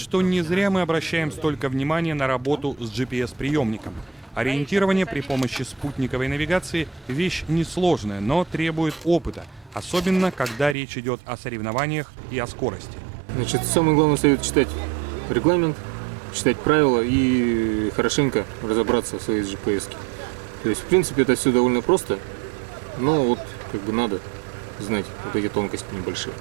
не зря мы обращаем столько внимания на работу с GPS-приемником. Ориентирование при помощи спутниковой навигации – вещь несложная, но требует опыта, особенно когда речь идет о соревнованиях и о скорости. Значит, самый главный совет – читать регламент, читать правила и хорошенько разобраться в своей GPS. То есть, в принципе, это все довольно просто, но вот как бы надо знать вот эти тонкости небольшие.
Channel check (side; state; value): left; drops out; at 10.8 s